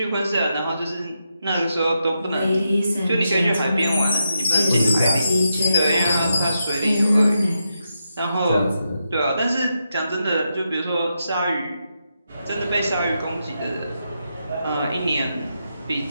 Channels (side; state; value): both; inverted; correlation -0.85